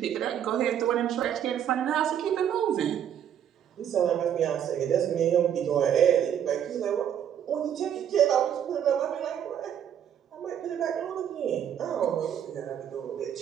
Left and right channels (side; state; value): left; quieter; 9.4 dB